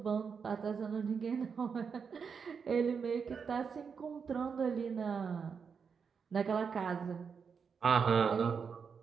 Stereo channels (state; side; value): quieter; left; 6.1 dB